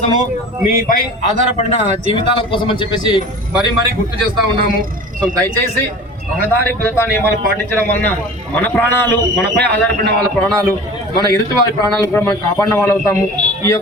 మీపై ఆధారపడిన జీవితాల కోసం అని చెప్పేసి మరీ గుర్తు చేస్తూ ఉన్నాము. సో దయచేసి రహదారి భద్రతా నియమాలు పాటించడం వలన మన ప్రాణాలు, మనపై ఆధారపడిన వాళ్ళ ప్రాణాలు, మన ఎదుటి వారి ప్రాణాలు కూడా మనం కాపాడిన వాళ్ళు అవుతాము. ఈ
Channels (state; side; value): normal; both; correlation 0.39